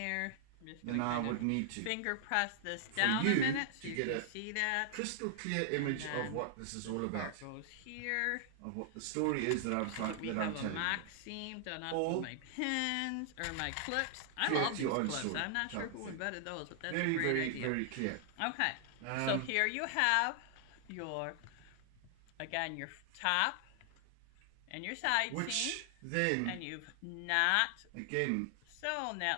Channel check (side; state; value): both; different; correlation 0.00